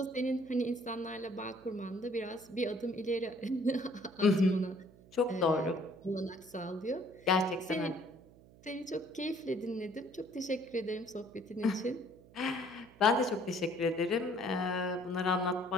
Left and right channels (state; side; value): noise; right; hum, 23 dB below the sound